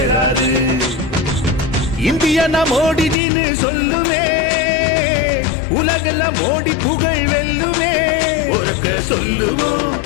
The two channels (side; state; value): right; drops out; at 3.2 s